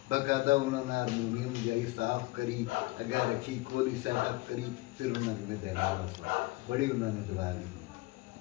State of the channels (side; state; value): right; quieter; 21.8 dB